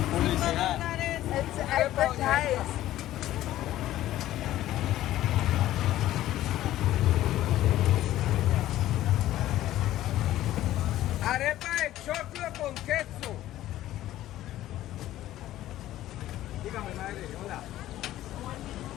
It's advertised. Arepa de choclo con queso. Dígame, madre, hola.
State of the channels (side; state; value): right; quieter; 14.1 dB